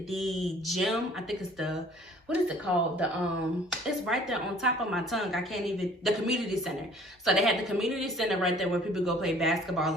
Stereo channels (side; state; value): both; normal; correlation 0.53